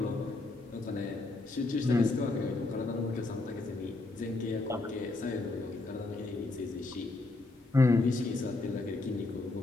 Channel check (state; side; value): quieter; right; 3.2 dB